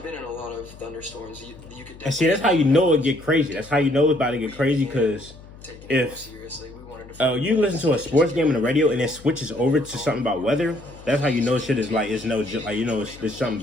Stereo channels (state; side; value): noise; left; hum, 19 dB below the sound